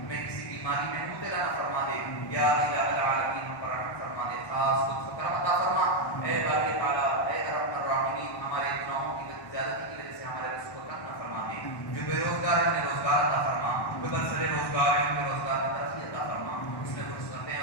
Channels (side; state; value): right; late; 1.1 ms